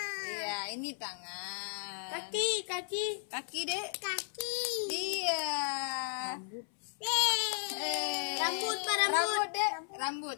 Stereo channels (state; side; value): silent; right; 55 dB below the other